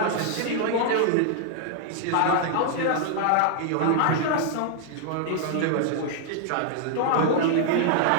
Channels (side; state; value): both; different; correlation -0.01